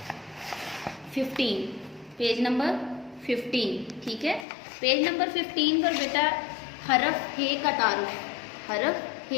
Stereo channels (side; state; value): right; drops out; at 4.5 s